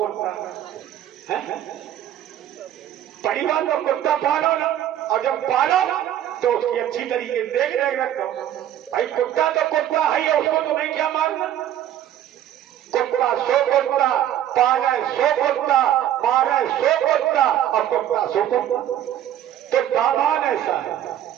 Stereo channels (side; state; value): left; quieter; 11.4 dB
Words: परिवार तो कुत्ता पालो ना, और जब पालो तो उसकी अच्छी तरीके देख रेख रखो। भाई कुत्ता तो कुत्ता है, उसको तुम्हें क्या मारना। कुत्ता सो कुत्ता, पाले सो कुत्ता, मारे सो कुत्ता, और कुत्ता सो कुत्ता। तो दामान ऐसा है।